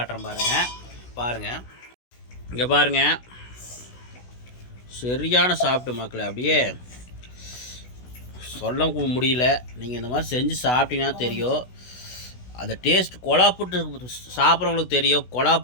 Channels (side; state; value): right; late; 16 ms